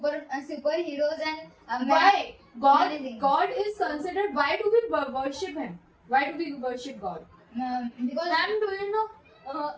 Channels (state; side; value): identical; both; correlation 1.00